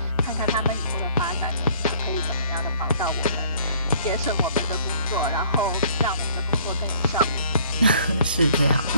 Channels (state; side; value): inverted; both; correlation -0.57